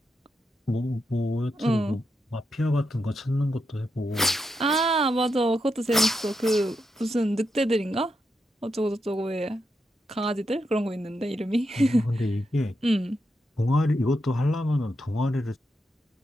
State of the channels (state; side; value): normal; both; correlation 0.84